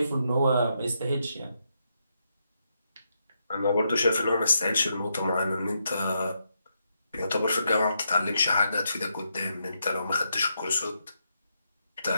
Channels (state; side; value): inverted; both; correlation -0.81